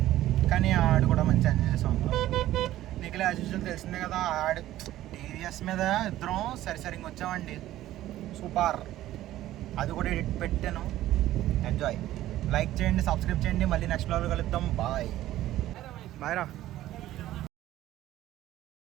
కానీ ఆడు కూడా మంచి ఎంజాయ్ చేసాం. నీకు యాజ్ యూజువల్ తెలిసిందే కదా. ఆడు టీవీఎస్ మీద ఇద్దరం సరిసరిగా వచ్చామండి. సూపర్. అది కూడా ఎడిట్ పెట్టాను. ఎంజాయ్. లైక్ చేయండి, సబ్స్క్రైబ్ చేయండి. మళ్ళీ నెక్స్ట్ బ్లాగ్లో కలుద్దాం. బాయ్ రా.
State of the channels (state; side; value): quieter; left; 14.3 dB